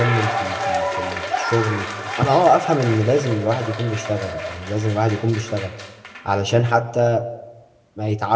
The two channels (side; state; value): both; identical; correlation 1.00